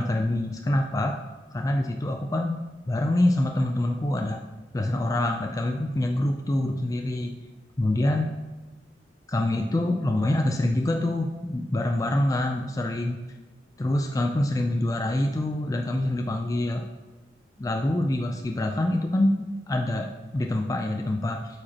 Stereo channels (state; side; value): normal; both; correlation 0.90